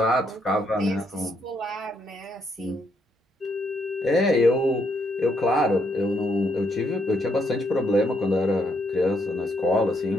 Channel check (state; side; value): normal; both; correlation 0.74